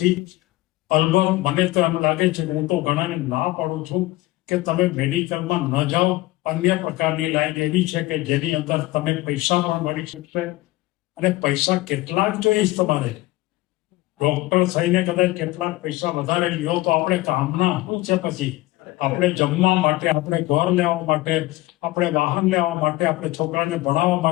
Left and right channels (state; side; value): quieter; right; 18.9 dB